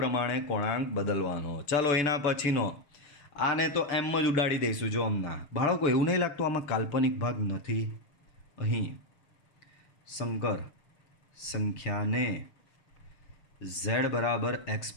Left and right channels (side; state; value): right; late; 6.6 ms